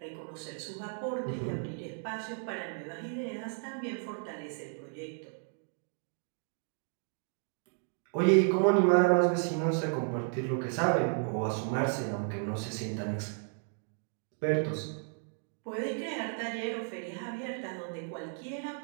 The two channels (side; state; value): left; silent; 55 dB below the other